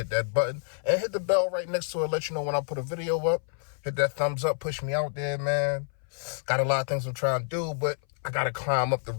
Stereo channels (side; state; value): right; silent; 58 dB below the other